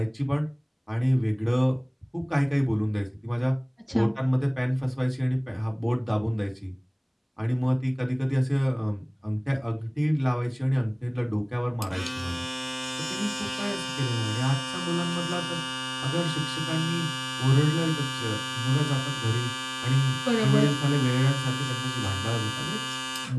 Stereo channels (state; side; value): identical; both; correlation 1.00